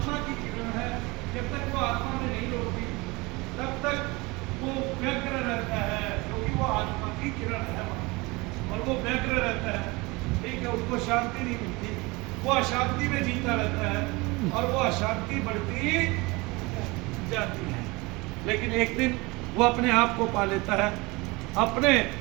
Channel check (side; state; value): left; quieter; 24.4 dB